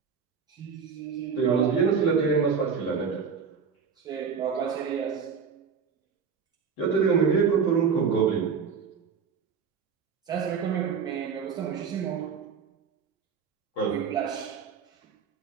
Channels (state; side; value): quieter; left; 6.3 dB